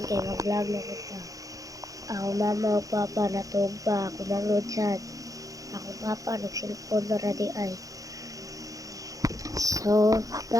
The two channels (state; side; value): late; left; 0.17 ms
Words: kay mag-vlog na kita. Ako mama o papa natug pa ako mangod sad. Ako papa nagselfon na ra di ay. So,